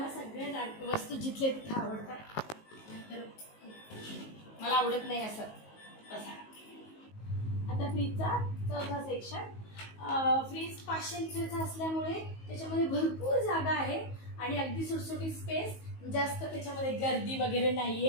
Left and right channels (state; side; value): late; right; 19 ms